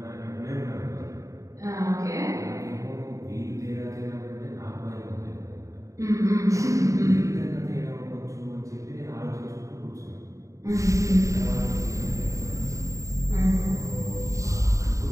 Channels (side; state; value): left; late; 0.16 ms